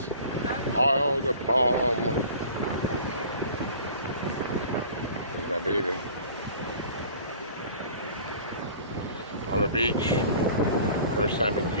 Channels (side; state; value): both; inverted; correlation -0.45